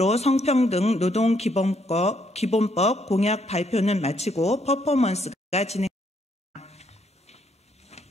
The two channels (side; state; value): both; normal; correlation 0.72